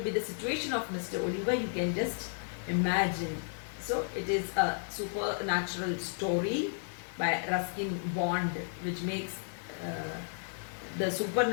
be the situation of Mr. Oliver? You can just imagine. So it is a supernatural story by Ruskin Bond, which makes the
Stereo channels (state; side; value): silent; right; 56 dB below the other